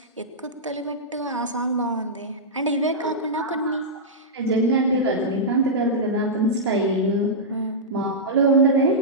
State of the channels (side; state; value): both; normal; correlation -0.12